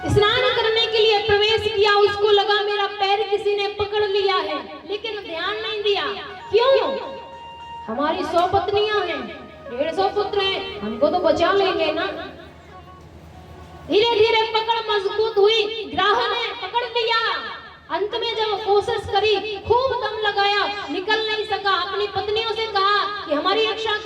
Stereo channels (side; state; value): both; identical; correlation 1.00